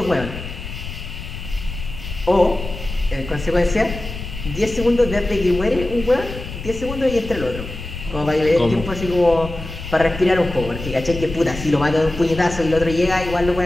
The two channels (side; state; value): left; noise; rumble, 10 dB below the sound